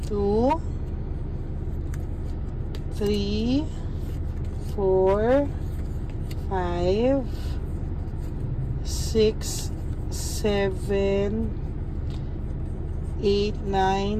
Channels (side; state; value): both; identical; correlation 1.00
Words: 2, 3, 4, 5, 6, 7, 8,